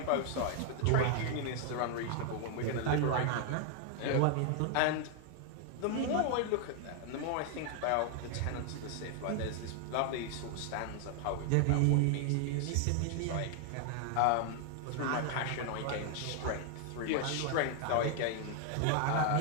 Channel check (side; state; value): both; different; correlation 0.00